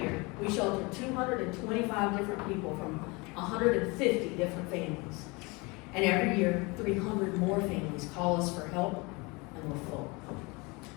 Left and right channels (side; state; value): right; quieter; 26.6 dB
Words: we shelter 225 different people from 150 different families. And every year, 300 more families call us for help, and we're full.